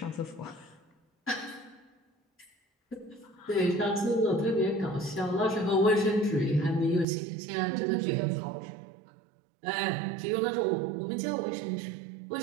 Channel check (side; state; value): left; drops out; at 7.1 s